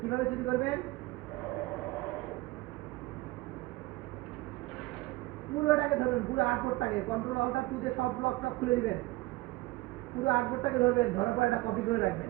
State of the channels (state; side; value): quieter; left; 20.0 dB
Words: কিভাবে চুরি করবেন? পুরোটাকে ধরবেন, পুরো আর্টবোর্ডটাকে কন্ট্রোল অল্টার টুতে সব ব্লকটা খুলে দিবেন, পুরো আর্টবোর্ডটাকে ধরবেন, ধরার পর এটা কপি করে রাখবেন।